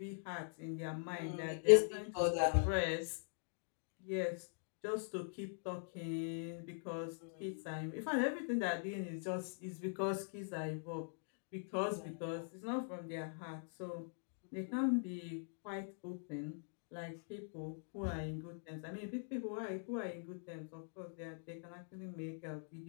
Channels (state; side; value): silent; right; digital silence